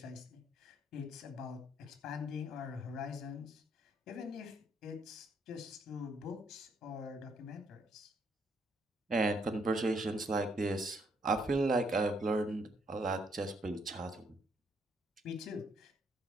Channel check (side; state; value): both; normal; correlation 0.72